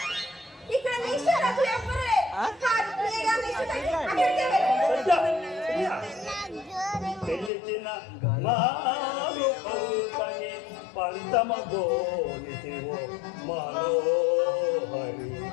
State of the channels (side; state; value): right; drops out; at 7.5 s